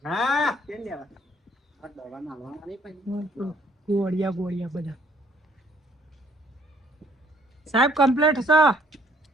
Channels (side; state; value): both; normal; correlation 0.62